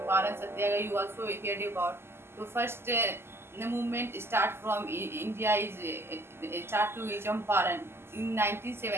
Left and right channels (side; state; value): left; late; 0.12 ms